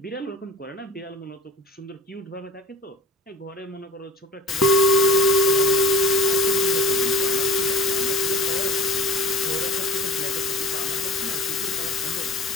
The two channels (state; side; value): normal; both; correlation 0.41